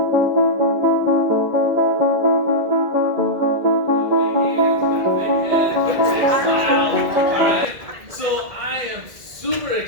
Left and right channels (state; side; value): late; left; 2.0 ms